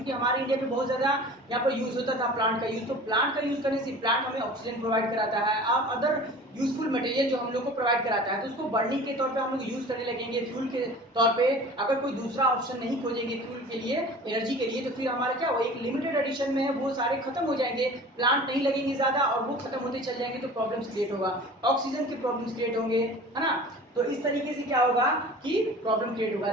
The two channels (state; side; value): normal; both; correlation 0.41